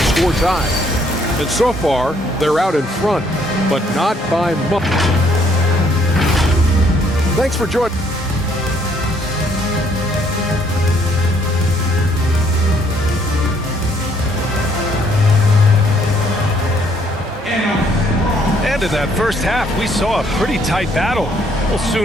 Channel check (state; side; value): normal; both; correlation 0.66